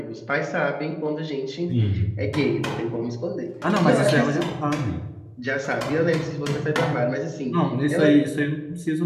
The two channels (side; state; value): both; identical; correlation 1.00